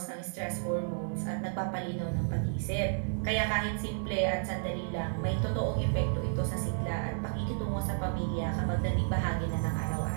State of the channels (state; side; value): silent; left; 56 dB below the other